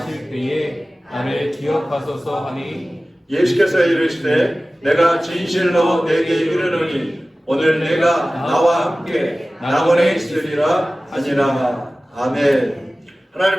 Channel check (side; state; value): both; normal; correlation 0.97